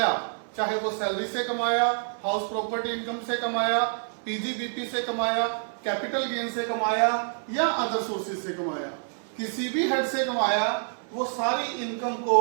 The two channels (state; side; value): silent; left; 58 dB below the other